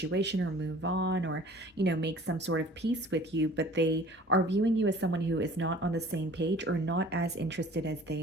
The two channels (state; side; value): normal; both; correlation 0.48